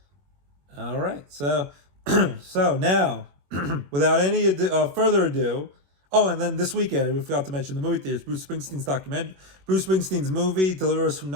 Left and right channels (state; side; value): late; left; 21 ms